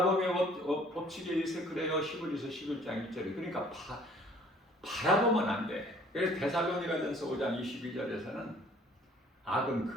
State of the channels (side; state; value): both; normal; correlation 0.55